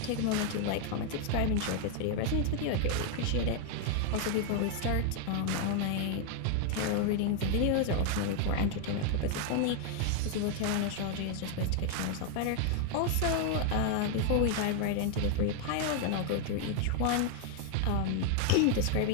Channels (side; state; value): both; different; correlation 0.00